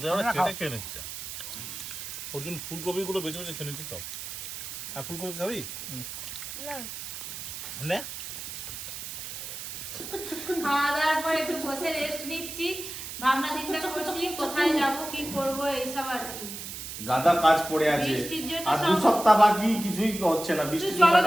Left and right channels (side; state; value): right; noise; hiss, 8 dB below the sound